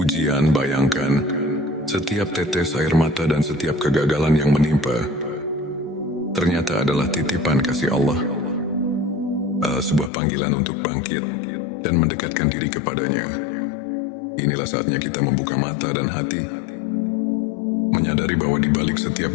Bayangkan, setiap tetes air mata dan setiap kegagalan yang menimpa ternyata adalah titipan kasih Allah, sebuah panggilan untuk bangkit dan mendekatkan diri kepadanya. Inilah saatnya kita membuka mata dan hati, menyadari bahwa di balik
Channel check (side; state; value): right; drops out; at 10.1 s